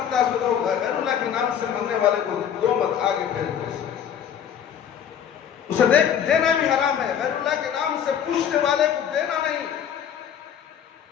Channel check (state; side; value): quieter; right; 8.8 dB